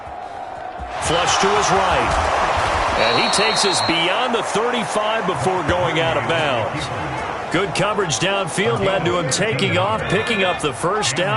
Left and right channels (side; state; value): both; identical; correlation 1.00